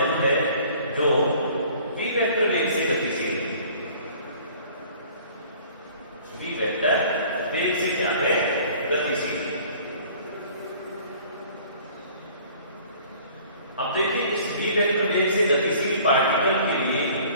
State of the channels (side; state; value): both; inverted; correlation -0.51